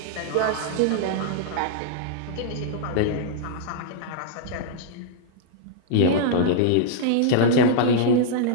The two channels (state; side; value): different; both; correlation -0.01